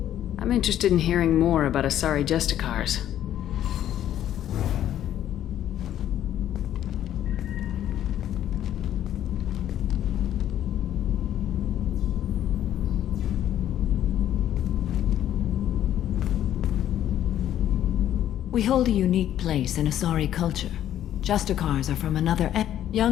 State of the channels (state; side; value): quieter; right; 11.4 dB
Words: I'm interested in hearing more about Asari Justicars. We hold a unique place in Asari culture. Justicars are from another